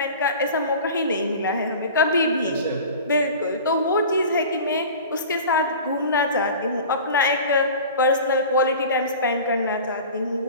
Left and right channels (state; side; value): inverted; both; correlation -0.38